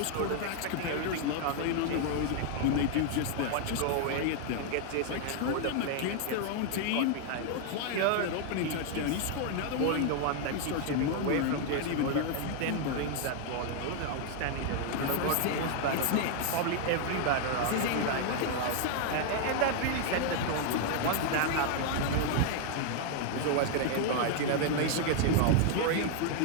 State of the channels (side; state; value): both; different; correlation 0.00